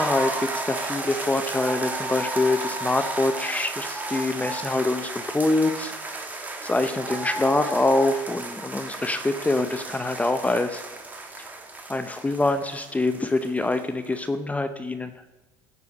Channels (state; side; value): normal; both; correlation 0.79